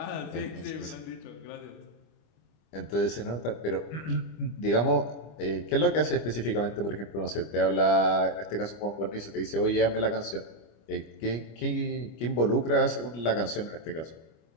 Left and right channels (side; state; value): right; late; 25 ms